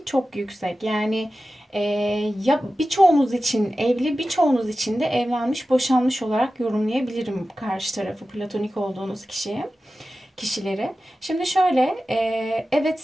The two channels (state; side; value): normal; both; correlation 0.94